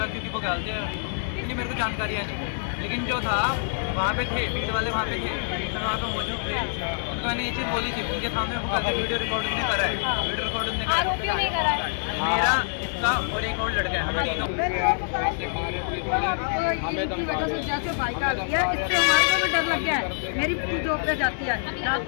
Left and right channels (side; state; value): right; silent; digital silence